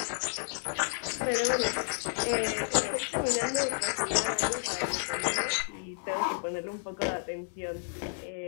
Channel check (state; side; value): silent; right; digital silence